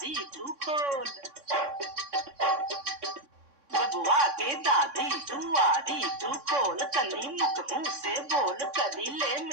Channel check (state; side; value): late; left; 3.6 ms